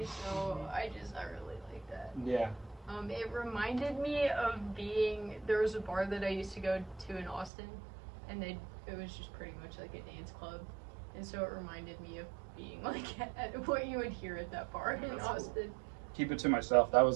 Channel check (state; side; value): drops out; left; at 7.5 s